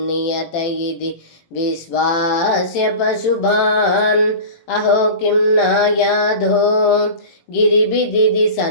நியத இதி விஸ்வாஸ்ய பசுபான் அஹோ கிம் நாயாதோ गिरिबिदिदि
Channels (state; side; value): late; right; 18 ms